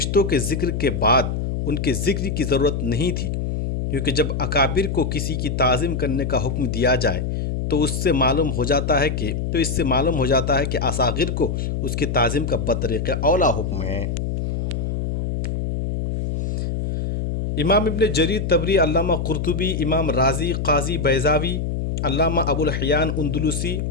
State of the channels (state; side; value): noise; left; hum, 2 dB below the sound